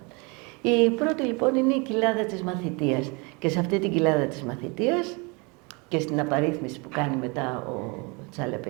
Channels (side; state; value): left; quieter; 29.9 dB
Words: Η πρώτη λοιπόν είναι η κοιλάδα της μαθητείας και σε αυτή την κοιλάδα της μαθητείας και στην απαρίθμηση που κάνει μετά ο